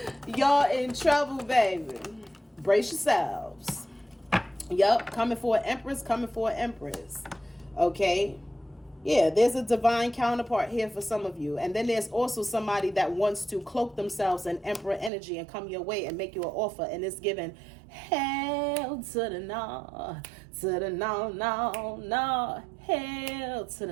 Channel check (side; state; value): left; drops out; at 15.1 s